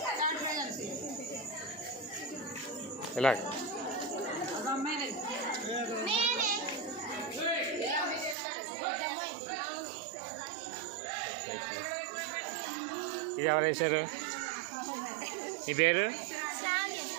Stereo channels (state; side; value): drops out; left; at 8.3 s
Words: ఇలా ఇది ఎవరు వేశారు? మీ పేరు?